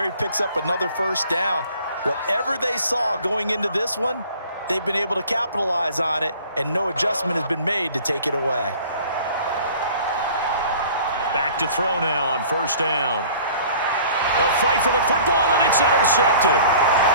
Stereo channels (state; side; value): inverted; both; correlation -0.49